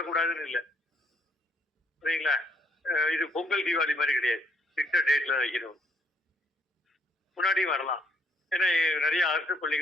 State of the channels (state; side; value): normal; both; correlation 0.69